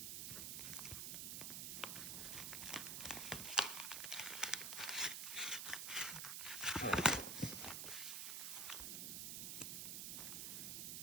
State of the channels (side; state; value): right; noise; hiss, 2 dB below the sound